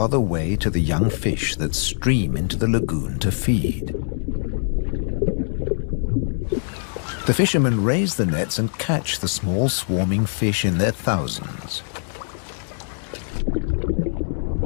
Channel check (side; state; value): right; silent; 64 dB below the other